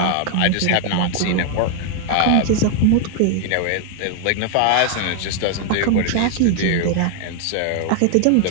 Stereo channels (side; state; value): both; different; correlation 0.00